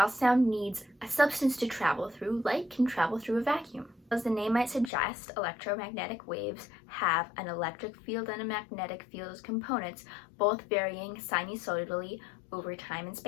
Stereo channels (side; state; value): right; drops out; at 4.9 s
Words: sound needs a substance to travel through, light can travel through a vacuum. As the name might suggest, electromagnetic waves have an electric field and a magnetic field as components, both varying sinusoidally over time and